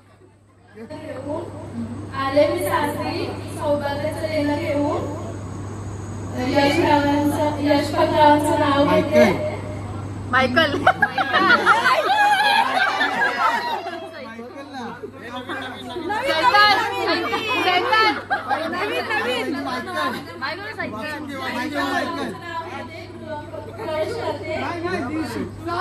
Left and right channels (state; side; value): identical; both; correlation 1.00